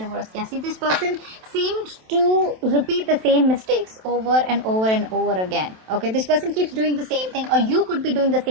Yeah, see, this person seemed to repeat the same mistakes over and over and over again. Okay, this person keeps doing the same thing, or you could be doing the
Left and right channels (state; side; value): late; left; 27 ms